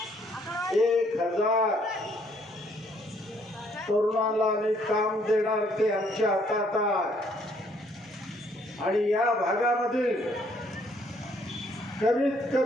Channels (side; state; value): both; normal; correlation 0.66